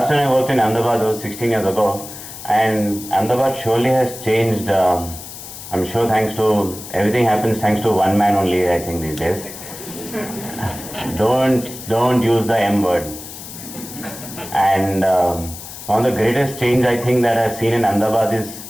time I worked in Ahmedabad, it was 16 years ago, and Ahmedabad surely has changed. I'm sure thanks to, everything happens thanks to one man only, I think, these days. Don't use the M word. And one of the greatest change I think that I've seen in Ahmedabad is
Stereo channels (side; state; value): left; noise; hiss, 13 dB below the sound